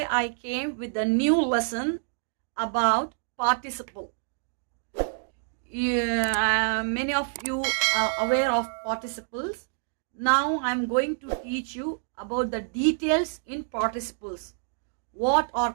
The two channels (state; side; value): silent; left; digital silence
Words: I came with a new lesson about participle. Many of you are aware of participles. Now I'm going to teach you about the details in participles. What are